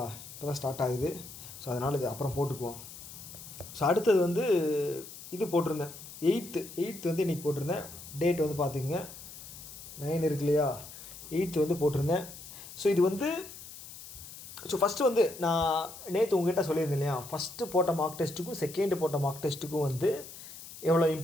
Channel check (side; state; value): left; noise; hiss, 14 dB below the sound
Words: இப்போ தான் ஸ்டார்ட் ஆகுது. ஸோ அதனால் இது அப்புறம் போட்டுக்குவோம். ஸோ அடுத்தது வந்து இது போட்டிருந்தேன். எயித்து வந்து இன்றைக்கி போட்டிருந்தேன். டேட் வந்து பார்த்துக்குங்க, 9 இருக்கு இல்லையா? 8 வந்து போட்டிருந்தேன். ஸோ இது வந்து ஃபஸ்ட்டு வந்து நான் நேற்று உங்ககிட்ட சொல்லியிருந்தேன் இல்லையா? ஃபஸ்ட்டு போட்ட மார்க் டெஸ்ட்டுக்கும் செகண்டு போட்ட மார்க் டெஸ்ட்டுக்கும் வந்து எவ்வளோ